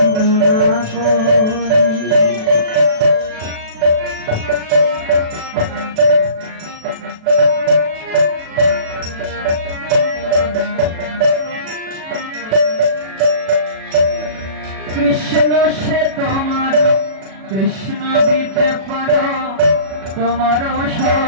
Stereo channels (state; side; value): late; left; 37 ms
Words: করি কৃষ্ণ সে তোমার কৃষ্ণ দিতে পারো তোমার